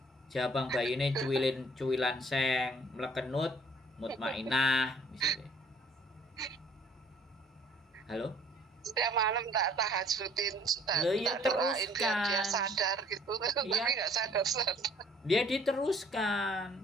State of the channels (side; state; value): both; normal; correlation 0.58